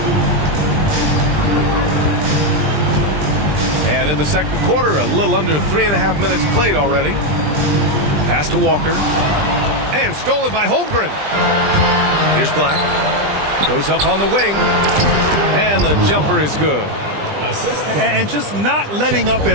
And in the second quarter, a little under 3.5 minutes played already. Pass to Walker. And stolen by Holmgren. Here's Black. Goes up on the wing. And the jumper is good. And just not letting up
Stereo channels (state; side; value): late; left; 20 ms